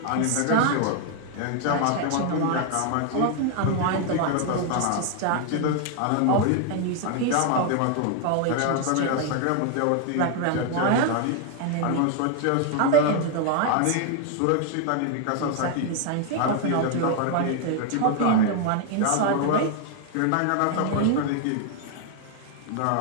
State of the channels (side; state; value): both; different; correlation 0.00